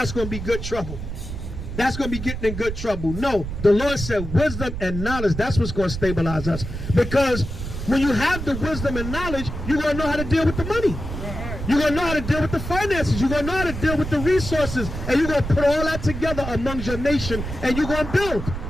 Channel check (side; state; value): right; noise; rumble, 7 dB below the sound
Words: going to be good trouble. That's going to be getting in good trouble. No, the Lord said wisdom and knowledge, that's what's going to stabilize us. Because when you have the wisdom and knowledge, you're going to know how to deal with the money. You're going to know how to deal with the finances. You're going to know how to deal with the resources. And you're going to put all that together amongst your nation, and you're going to build.